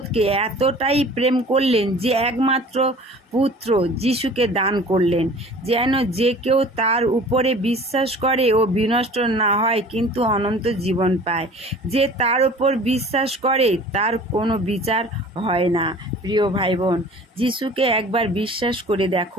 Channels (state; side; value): normal; both; correlation 0.45